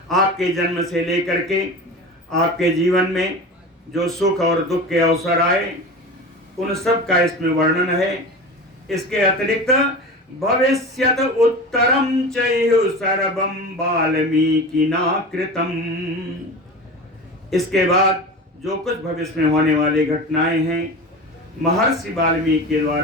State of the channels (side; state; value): both; normal; correlation 0.31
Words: आपके जन्म से लेकर के आपके जीवन में जो सुख और दुख के अवसर आए उन सब का इसमें वर्णन है। इसके अतिरिक्त भविष्यत उत्तरम चैह सर्वम वाल्मीकिना कृतम। इसके बाद जो कुछ भविष्य में होने वाली घटनाएं हैं महर्षि वाल्मीकि के